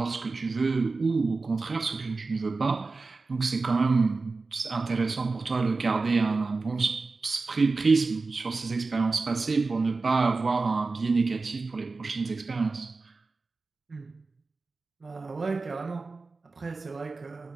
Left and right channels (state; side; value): quieter; left; 3.9 dB